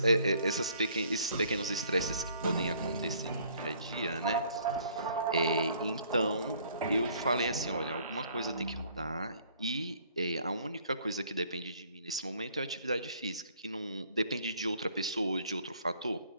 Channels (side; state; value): both; inverted; correlation -0.60